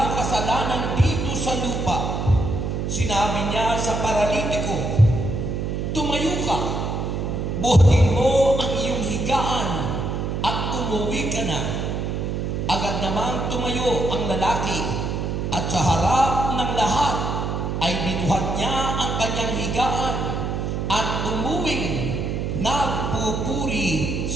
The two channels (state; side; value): noise; right; hum, 2 dB below the sound